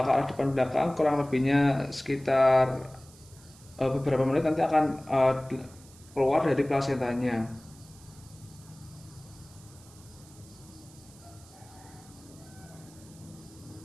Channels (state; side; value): noise; right; hiss, 23 dB below the sound